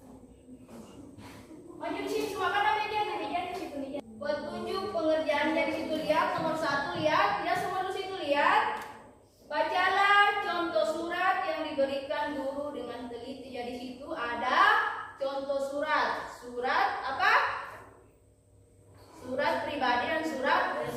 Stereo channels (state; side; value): identical; both; correlation 1.00